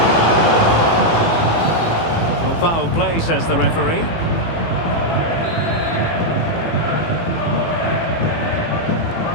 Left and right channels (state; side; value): late; right; 18 ms